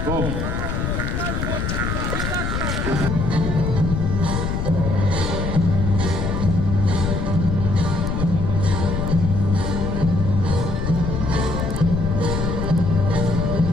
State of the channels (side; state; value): left; noise; rumble, 1 dB below the sound